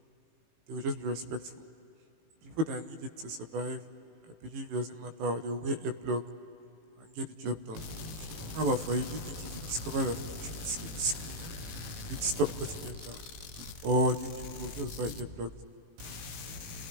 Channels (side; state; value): left; late; 18 ms